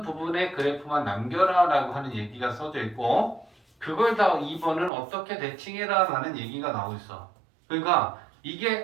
부분의 그래프만 남겨라 라고 하는 얘기가 써져 있고 그걸 다 2번은 어떻게 대칭해라 라는 얘기가 나오고 있어. 그러니까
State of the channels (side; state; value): left; drops out; at 4.9 s